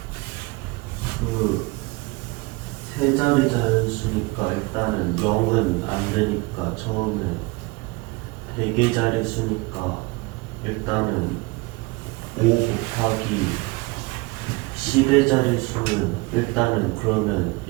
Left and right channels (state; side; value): quieter; left; 25.2 dB